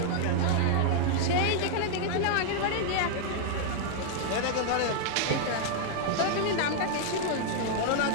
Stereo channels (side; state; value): both; different; correlation 0.00